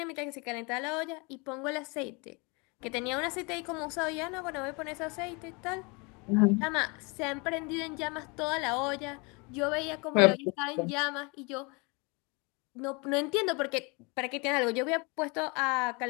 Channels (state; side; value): quieter; right; 29.6 dB